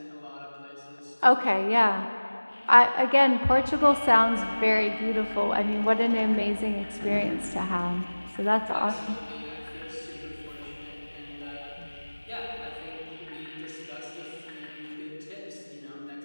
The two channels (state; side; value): inverted; both; correlation -1.00